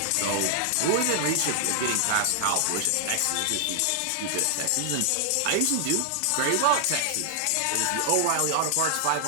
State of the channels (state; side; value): different; both; correlation 0.00